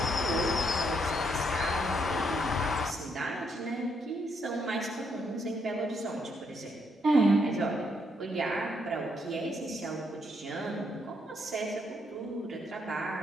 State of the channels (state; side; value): normal; both; correlation 0.75